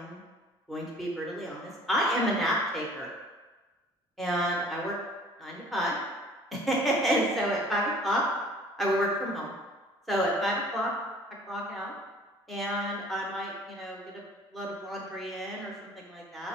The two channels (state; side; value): normal; both; correlation 0.51